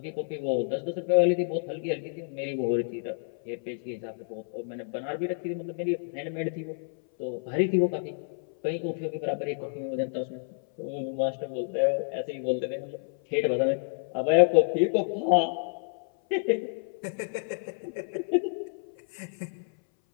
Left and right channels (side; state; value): right; silent; 58 dB below the other